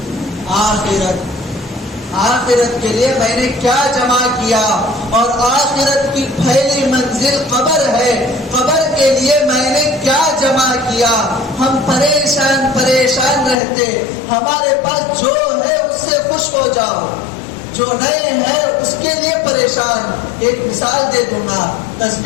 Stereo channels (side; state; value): right; drops out; at 13.6 s